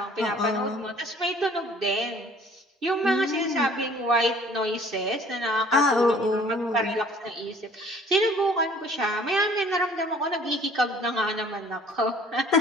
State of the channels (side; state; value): both; normal; correlation 0.53